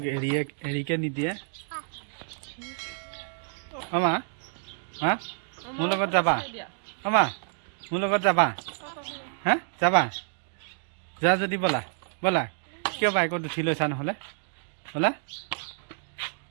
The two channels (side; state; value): left; silent; digital silence